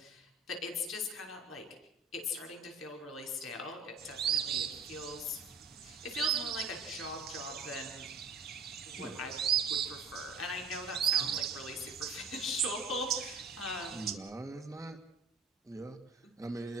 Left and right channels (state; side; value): quieter; left; 4.1 dB